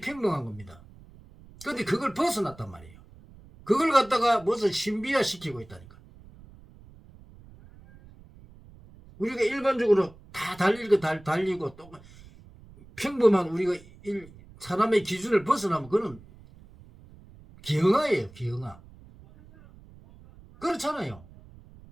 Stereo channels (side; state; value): right; noise; rumble, 22 dB below the sound